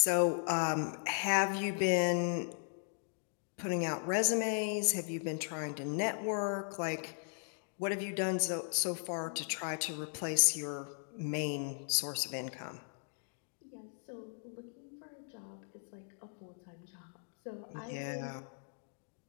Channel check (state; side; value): silent; right; digital silence